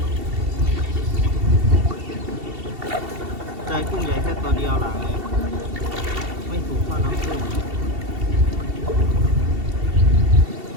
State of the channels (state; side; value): late; left; 2.7 ms